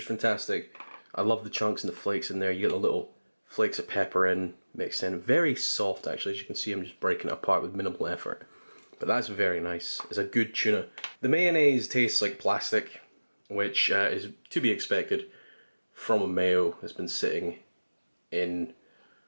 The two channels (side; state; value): both; inverted; correlation -1.00